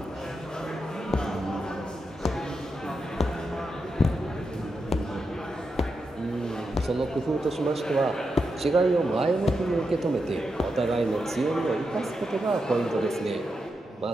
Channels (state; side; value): normal; both; correlation 0.86